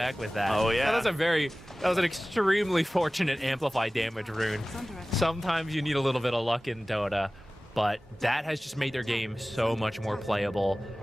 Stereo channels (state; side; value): normal; both; correlation 0.97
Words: with that. Oh, yeah. That was an extremely fortunate amplify damage rune. Sometimes you need a little bit of luck in Dota, but that has just made their game so much more playable.